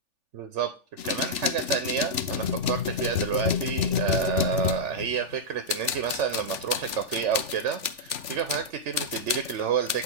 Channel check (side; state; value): left; late; 3.4 ms